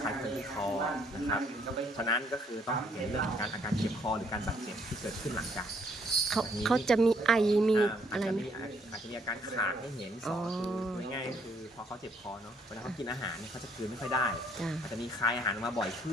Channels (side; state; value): both; normal; correlation 0.67